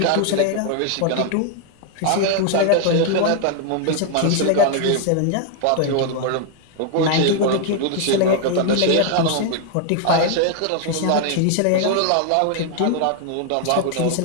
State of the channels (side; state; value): both; different; correlation 0.00